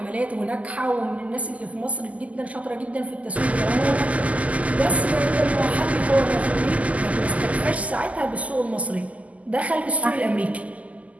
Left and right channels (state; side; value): late; left; 0.071 ms